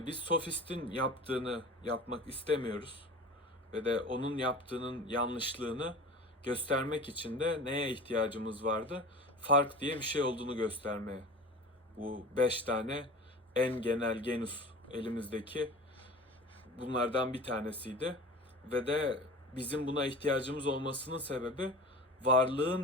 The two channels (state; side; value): normal; both; correlation 0.36